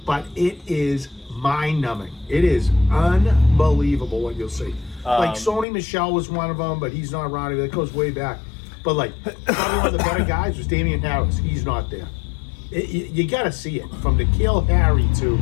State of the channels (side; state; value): right; drops out; at 5.7 s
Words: but it is mind-numbing. It is unbelievable what you'll see. Like Sony Michel was one of them, but he's not around. That goes way back. But like probably one of the better guys was Damian Harris. He's not there. You got to see it from N'Keal Harry to